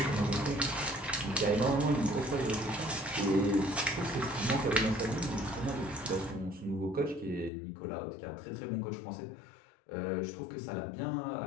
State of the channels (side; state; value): right; drops out; at 7.5 s